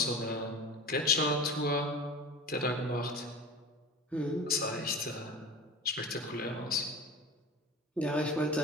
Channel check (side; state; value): both; normal; correlation 0.33